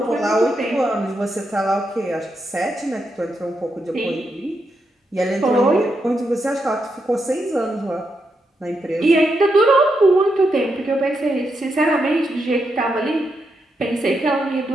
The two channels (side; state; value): both; normal; correlation 0.83